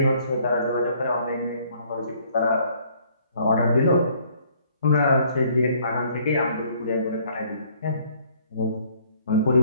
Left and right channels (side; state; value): both; inverted; correlation -0.61